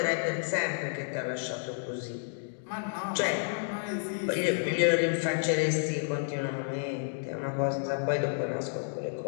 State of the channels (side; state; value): right; silent; digital silence